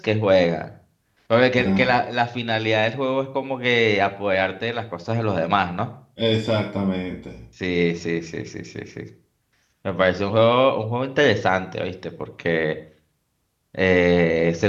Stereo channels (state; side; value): identical; both; correlation 1.00